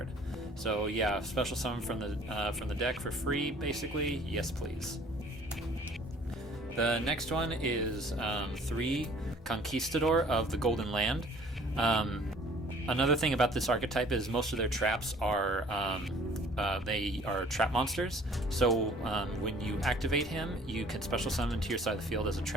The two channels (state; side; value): normal; both; correlation 0.54